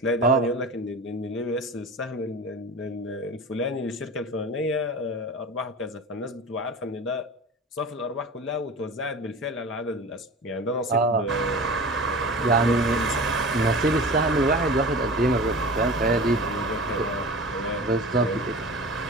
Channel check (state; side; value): normal; both; correlation 0.35